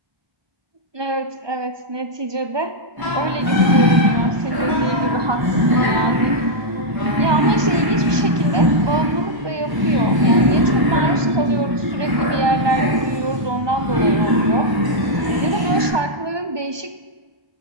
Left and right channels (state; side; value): late; left; 1.2 ms